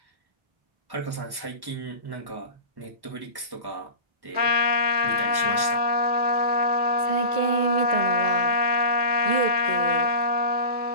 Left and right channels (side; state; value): left; late; 1.1 ms